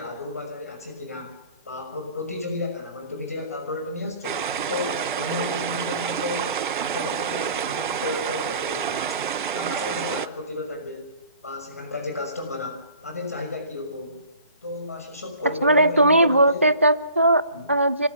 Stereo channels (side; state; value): both; inverted; correlation -0.50